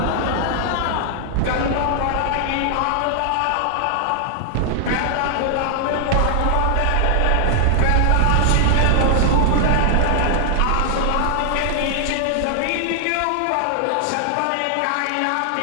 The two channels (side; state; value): both; different; correlation 0.00